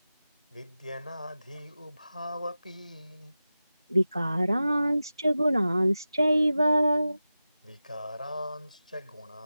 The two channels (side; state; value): both; inverted; correlation -0.94